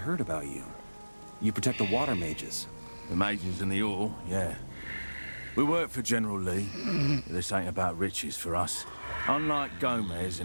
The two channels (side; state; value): both; inverted; correlation -1.00